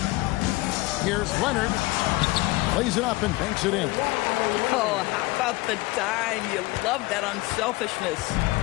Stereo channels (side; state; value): right; quieter; 21.2 dB